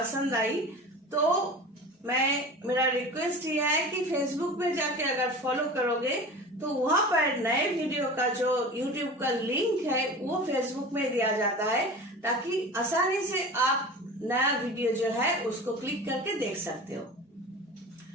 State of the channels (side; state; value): both; normal; correlation 0.35